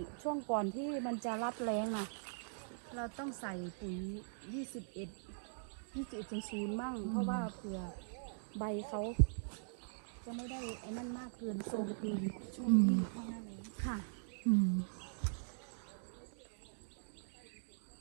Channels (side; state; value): left; silent; digital silence